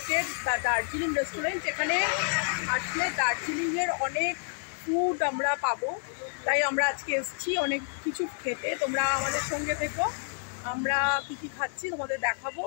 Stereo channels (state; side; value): silent; right; 58 dB below the other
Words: দার্জিলিং রেস্টুরেন্ট। এখানে আসলে দার্জিলিংয়ের অনেক ফুড আমরা পাবো, তাই আমরা আজকে এসেছি অনেক কিছু খেতে। তোমরা আমাদের সঙ্গে থেকো, আমরা কি কি খাচ্ছি তোমাদের দেখাবো।